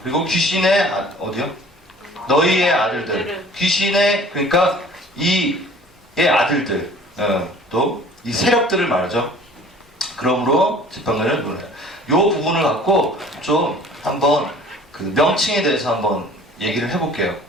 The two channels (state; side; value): normal; both; correlation 0.49